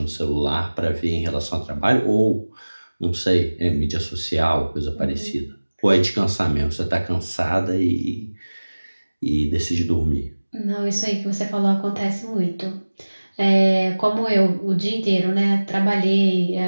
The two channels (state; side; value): inverted; both; correlation -1.00